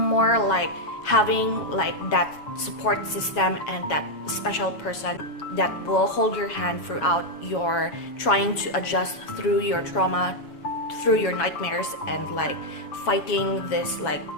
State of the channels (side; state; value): right; late; 7.2 ms